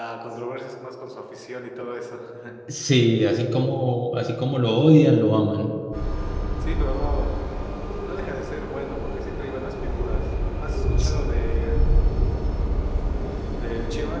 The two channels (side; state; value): both; identical; correlation 1.00